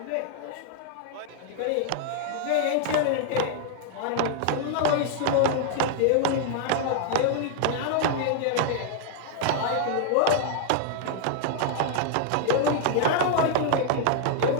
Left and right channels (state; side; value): different; both; correlation 0.00